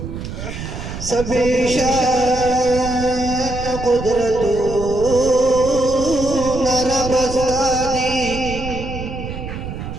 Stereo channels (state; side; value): noise; right; rumble, 8 dB below the sound